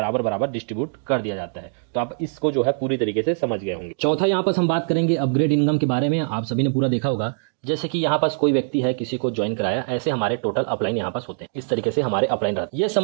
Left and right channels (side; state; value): left; silent; digital silence